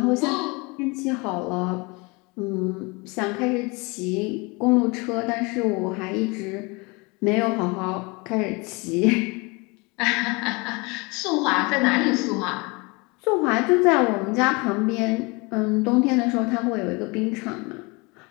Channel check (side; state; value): right; quieter; 27.4 dB